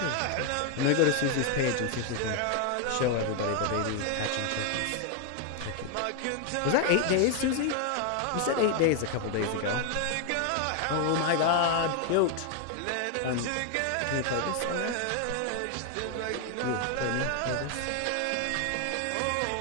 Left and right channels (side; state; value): both; different; correlation 0.00